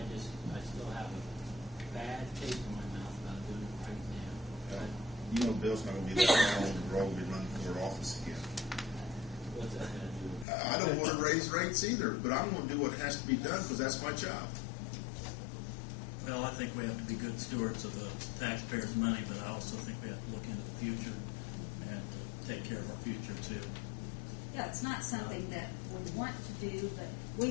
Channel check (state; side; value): drops out; right; at 10.5 s